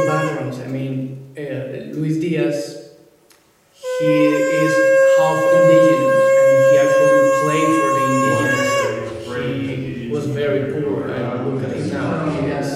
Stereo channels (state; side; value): identical; both; correlation 1.00